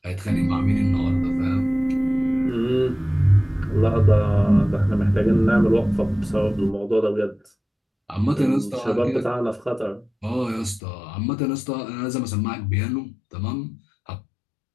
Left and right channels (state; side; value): drops out; right; at 10.8 s